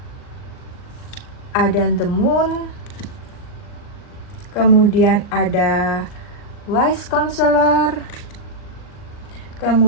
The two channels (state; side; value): late; right; 39 ms